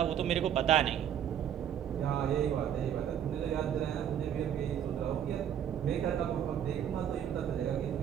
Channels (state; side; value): quieter; left; 9.5 dB